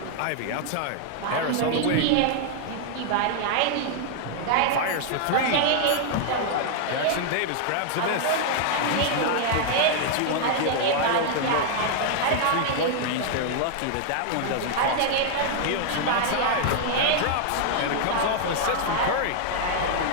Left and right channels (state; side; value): different; both; correlation 0.00